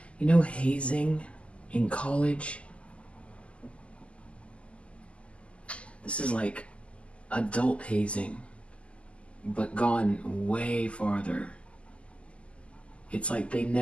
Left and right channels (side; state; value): right; late; 0.057 ms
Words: hazing in college. This is like adult hazing, but gone way farther. It's like they